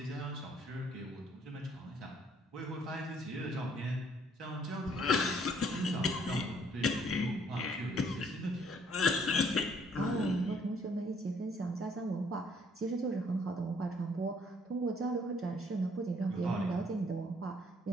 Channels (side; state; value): both; normal; correlation 0.64